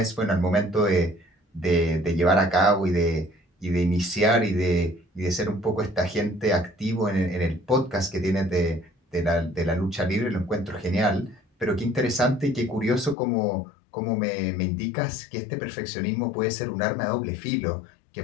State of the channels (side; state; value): right; drops out; at 13.2 s